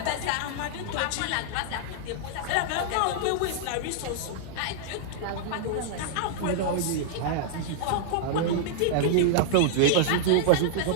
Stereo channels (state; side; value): different; both; correlation -0.01